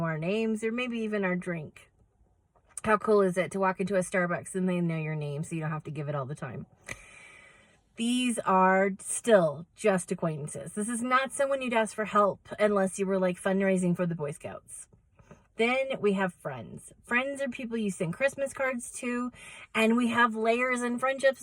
our names or maybe even our drink. How cool is it to walk into a Starbucks and they know your name so you don't have to give it all the time? These are still just acquaintances. This is not someone you'd ask for help unless you were like fundraising for the Boy Scouts. Then we have friends. Friends are people you send Christmas cards to, and we have layers in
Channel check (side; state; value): both; identical; correlation 1.00